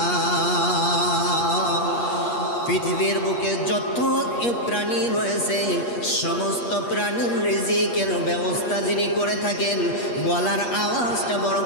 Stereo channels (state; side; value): late; right; 8.4 ms